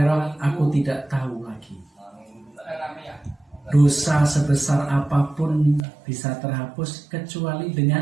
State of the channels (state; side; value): drops out; left; at 5.9 s